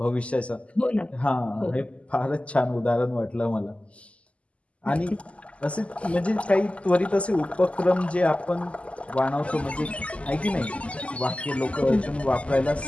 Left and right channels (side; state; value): right; late; 0.061 ms